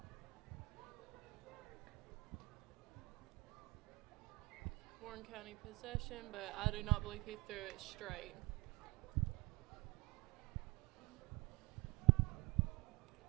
Warren County possession, but I do not believe he threw it straight.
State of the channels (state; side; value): quieter; left; 26.0 dB